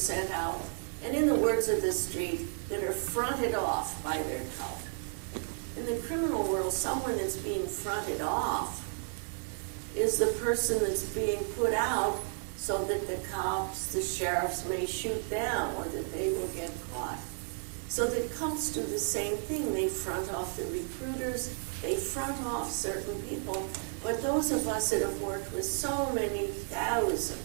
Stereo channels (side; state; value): left; silent; 56 dB below the other